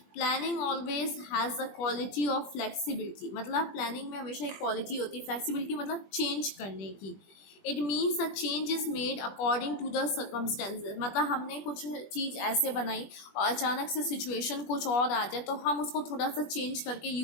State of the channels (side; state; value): right; late; 20 ms